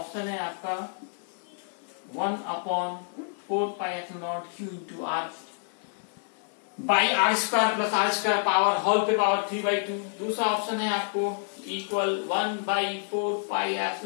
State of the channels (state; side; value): silent; right; digital silence